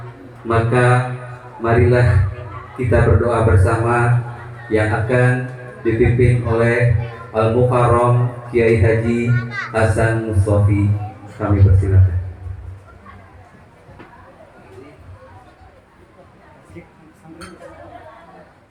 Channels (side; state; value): both; identical; correlation 1.00